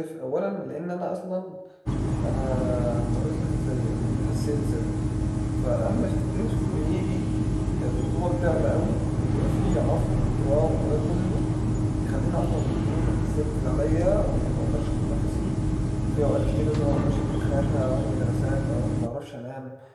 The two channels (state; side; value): identical; both; correlation 1.00